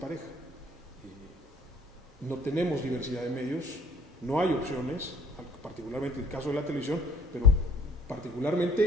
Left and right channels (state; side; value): normal; both; correlation 0.56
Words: No tenemos diversidad de medios, no hay opciones, particularmente en el caso de la televisión, pero